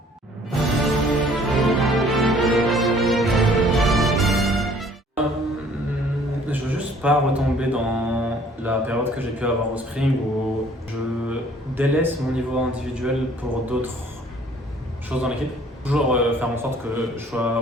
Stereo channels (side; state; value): both; normal; correlation 0.56